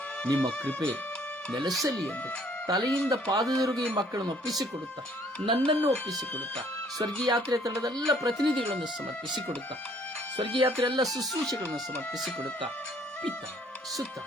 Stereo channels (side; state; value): both; normal; correlation 0.61